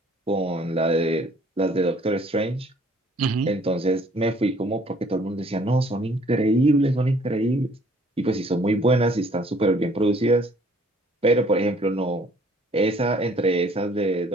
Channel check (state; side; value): normal; both; correlation 0.59